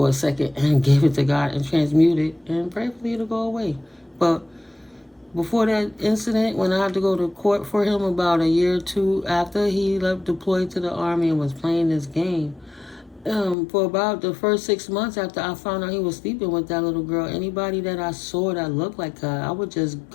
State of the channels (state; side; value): drops out; right; at 13.6 s